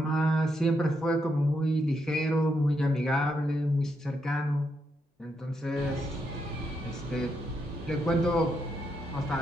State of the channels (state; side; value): normal; both; correlation 0.80